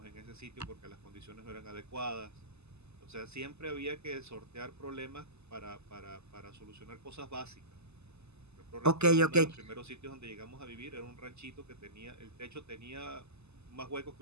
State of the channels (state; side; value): late; left; 0.80 ms